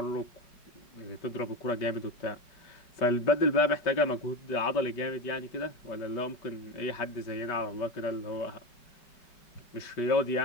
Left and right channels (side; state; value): right; late; 5.2 ms